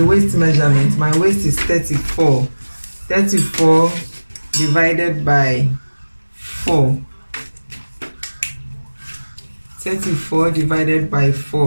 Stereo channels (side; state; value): both; inverted; correlation -1.00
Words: measurement, my waist is 34. 34 divided by 4. 34 divided by